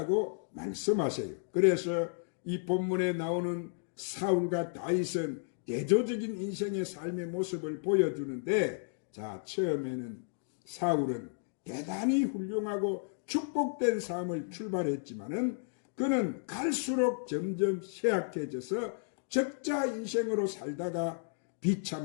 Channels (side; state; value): right; silent; digital silence